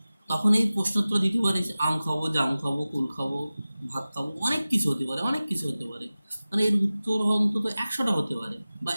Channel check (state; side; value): inverted; both; correlation -0.96